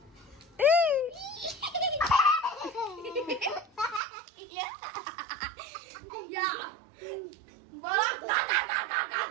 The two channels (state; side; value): drops out; left; at 4.0 s